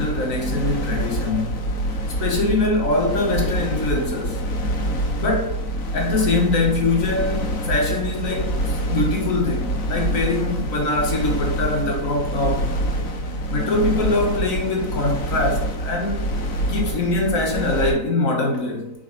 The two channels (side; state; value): right; late; 3.9 ms